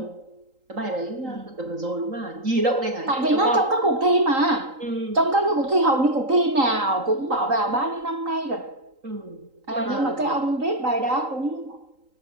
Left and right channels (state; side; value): late; left; 3.8 ms